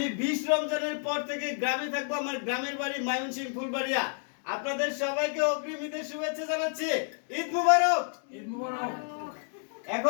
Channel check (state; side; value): silent; right; 58 dB below the other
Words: 20 রমজানের পর থেকে গ্রামে থাকবো, আমার গ্রামের বাড়ি ময়মনসিংহ ফুলবাড়িয়া। আপনাদের সবাইকে অগ্রিম ঈদের শুভেচ্ছা জানাচ্ছি। ঈদ মুবারক। ঈদ মুবারক।